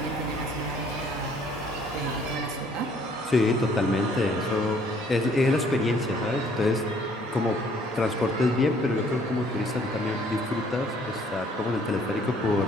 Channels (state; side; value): normal; both; correlation 0.61